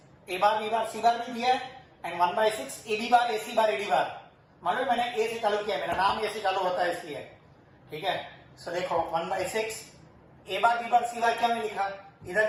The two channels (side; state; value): both; identical; correlation 1.00